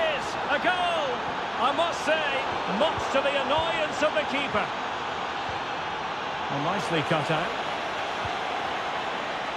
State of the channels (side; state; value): both; identical; correlation 1.00